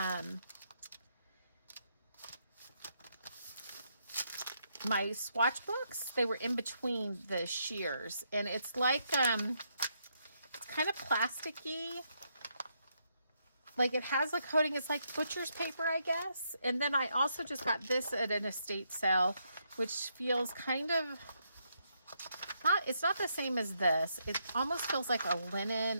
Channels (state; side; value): inverted; both; correlation -0.77